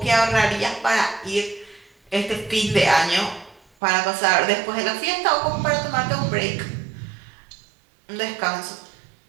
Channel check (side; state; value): left; drops out; at 3.6 s